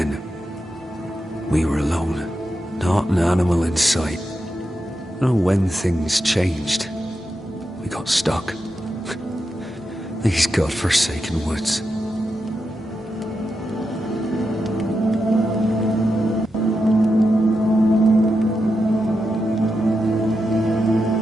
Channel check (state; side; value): normal; both; correlation 0.87